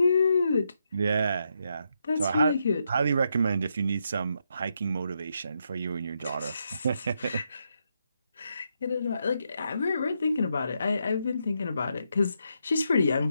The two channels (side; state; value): both; inverted; correlation -0.81